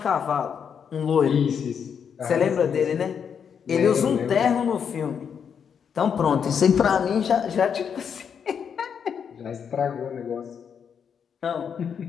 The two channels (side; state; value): right; quieter; 7.3 dB